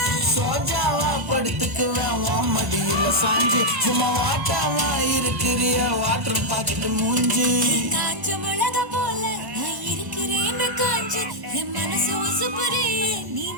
சோஜாவா படுத்துக்குவேன் உன் மடியில சாஞ்சி சும்மா வாட்டாவா இருக்கிறிய வாட்டர் பாக்கெட்டு மூஞ்சி. காஞ்ச மிளகா போல நான் இருக்கிறேன்னு காஞ்ச என் மனசு உசுப்புறியே நீ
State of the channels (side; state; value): left; late; 1.1 ms